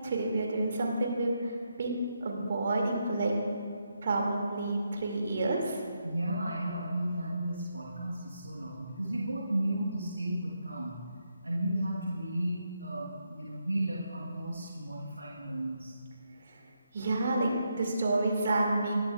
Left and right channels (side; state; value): both; inverted; correlation -0.81